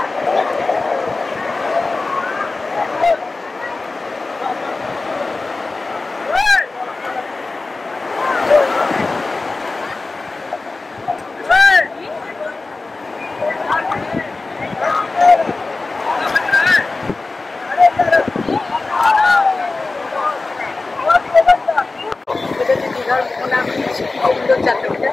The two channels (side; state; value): right; quieter; 3.5 dB